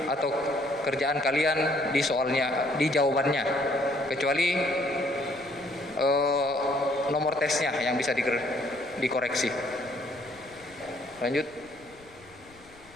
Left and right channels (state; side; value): noise; left; rumble, 26 dB below the sound